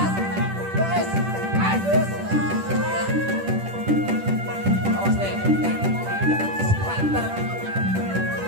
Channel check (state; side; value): late; left; 10 ms